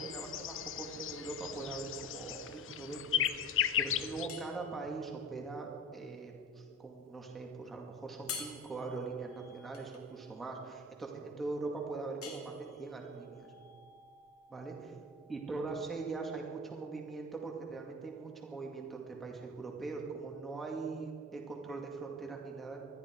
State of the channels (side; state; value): both; normal; correlation 0.37